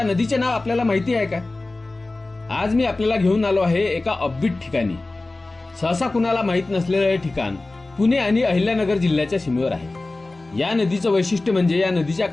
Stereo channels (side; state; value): right; quieter; 3.1 dB